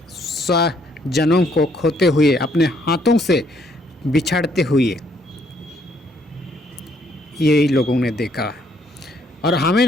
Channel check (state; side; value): normal; both; correlation 0.68